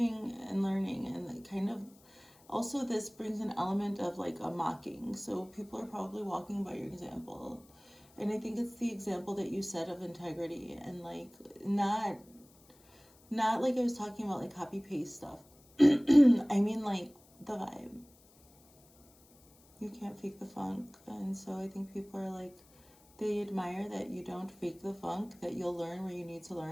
and learning, and kind of also this brings an element of like a mocking. So people are probably walking by your example. And I think it's the example that you set of integrity, and like not like I was talking about like copy paste stuff. I mean like the vibe. You can't fake the funk. And so I think people are like, they admire that you don't fake the funk, that you'll learn where you need to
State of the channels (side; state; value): left; noise; hiss, 28 dB below the sound